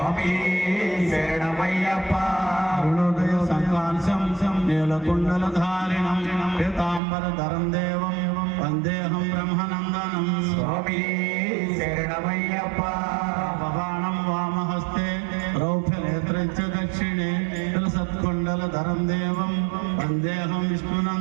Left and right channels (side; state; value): left; drops out; at 7.0 s